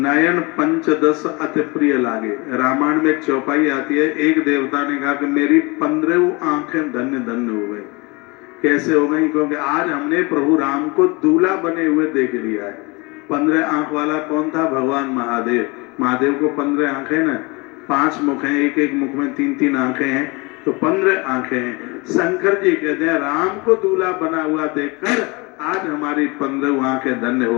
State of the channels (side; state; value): right; quieter; 26.7 dB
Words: पंचदश अति प्रिय लागे, रामायण में एक चौपाई आती है। एक देवता ने कहा कि मेरी 15 आंखें धन्य धन्य हो गई। कैसे हो गई? क्योंकि आज हमने प्रभु राम को दूल्हा बने हुए देख लिया है। 15 आंख वाला कौन था? भगवान महादेव। महादेव को 15 आंखें ना, 5 मुख हैं, एक एक मुख में 3-3 आंखें हैं, तो 15 आंखें हैं। शंकर जी कहते हैं राम को दूल्हा बना हुआ देखकर आज हमारी 15 आंखें धन्य